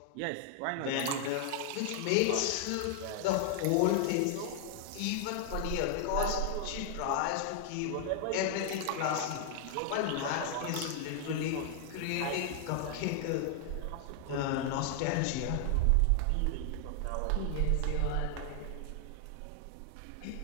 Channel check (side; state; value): both; different; correlation 0.00